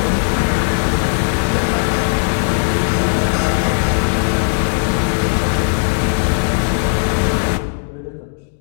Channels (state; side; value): silent; right; digital silence